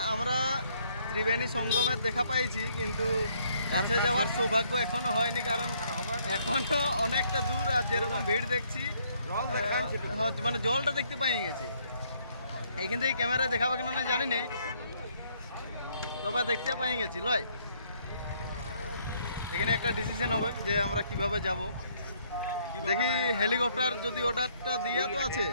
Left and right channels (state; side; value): inverted; both; correlation -0.68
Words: আমরা ত্রিবেণী সঙ্গমের দেখা পাইছি, কিন্তু কাছে যাওয়ার সৌভাগ্য এখনো হয়নি, কারণ এখনো অনেকটা দূর। আর যেরকম ভিড় দেখছি মানে জলটা দেখতে পাই গেছি। এইখান থেকে ক্যামেরায় দেখাবে কেন না জানি না, তবে দেখতে পাই গেছি লয়। এখানে একটা ডিসিশন হবে যে আমরা কিভাবে যাব। দেখি হেলিকপ্টার যদি অর্ডারটা দিয়া তো আছে,